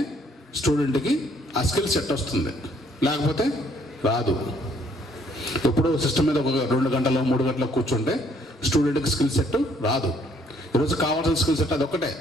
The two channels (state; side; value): normal; both; correlation 0.65